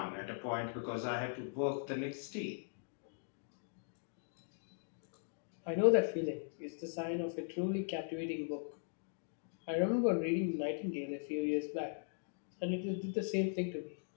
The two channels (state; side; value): silent; right; digital silence